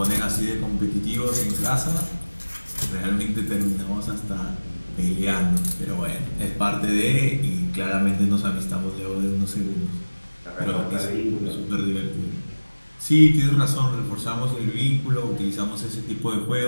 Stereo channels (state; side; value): inverted; both; correlation -1.00